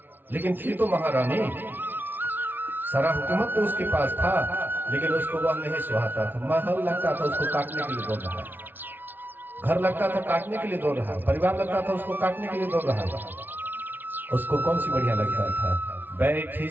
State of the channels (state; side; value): late; left; 0.093 ms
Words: लेकिन थी तो महारानी। सारा हुकूमत तो उसके पास था, लेकिन उसको वह नहीं सुहाता था। महल लगता था उसको काटने के लिए दौड़ रहा है, घर लगता था काटने के लिए दौड़ रहा है, परिवार लगता था उसको काटने के लिए दौड़ रहा है। उसको कौन सी बढ़िया लगता था? बैठी